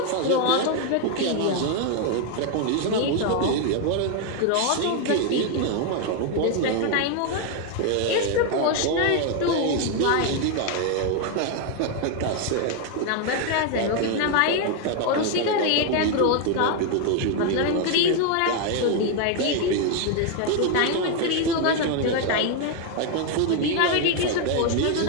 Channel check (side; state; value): both; different; correlation 0.01